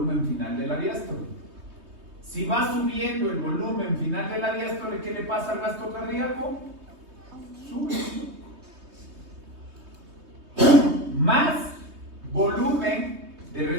final de la diástole. Si va subiendo el volumen final de la diástole, ¿qué le pasa al gasto cardíaco? Sube. Más volumen de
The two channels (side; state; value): left; late; 3.2 ms